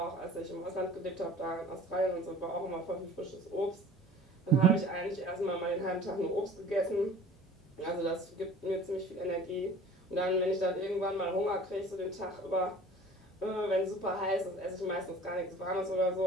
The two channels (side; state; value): both; normal; correlation 0.46